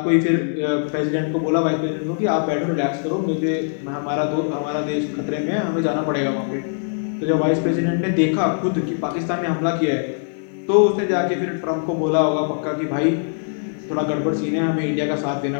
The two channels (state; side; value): silent; right; digital silence